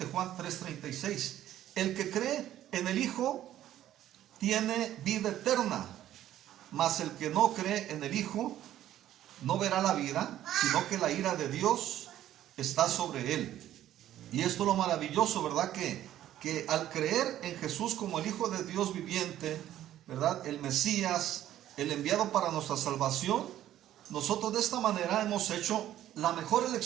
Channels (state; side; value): quieter; left; 12.5 dB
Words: Juan 3:36, el que cree en el Hijo tiene vida eterna, mas el que no cree en el Hijo no verá la vida, sino que la ira de Dios está sobre él. Y esto es lo maravilloso, ¿verdad? Que al creer en Jesús como el Hijo de Dios viviente, ¿verdad? El Mesías, el enviado para nuestra salvación, nosotros de esta manera hemos hecho la mejor